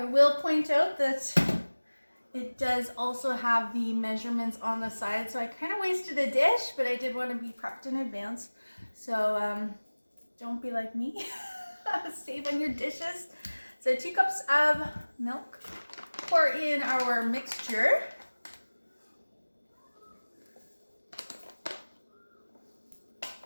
will point out that it does also have the measurements on the side, so I kind of wasted a dish, but I did want to be prepped in advance. So don't be like me. Save on your dishes. So 2 cups of milk. Pour in our mixture.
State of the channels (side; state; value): both; inverted; correlation -1.00